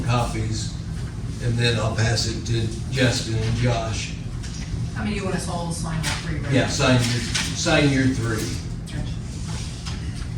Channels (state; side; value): identical; both; correlation 1.00